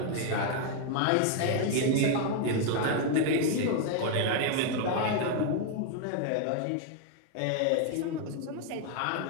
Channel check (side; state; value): both; different; correlation 0.00